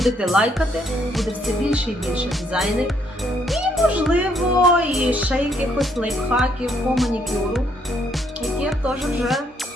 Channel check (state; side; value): normal; both; correlation 0.70